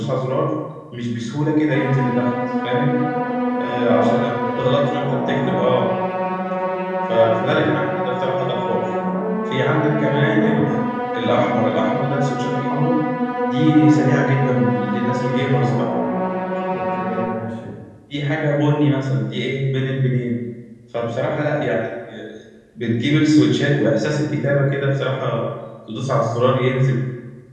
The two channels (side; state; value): both; identical; correlation 1.00